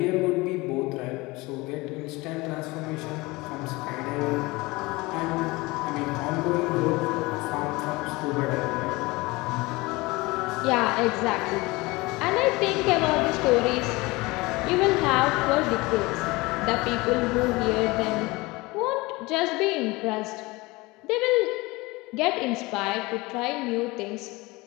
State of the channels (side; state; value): right; quieter; 22.7 dB